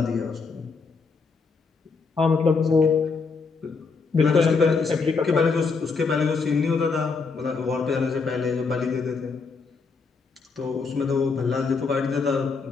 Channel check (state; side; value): quieter; right; 4.7 dB